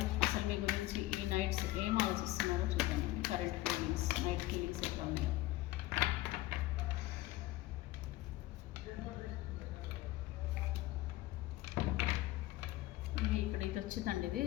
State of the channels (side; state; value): right; quieter; 17.4 dB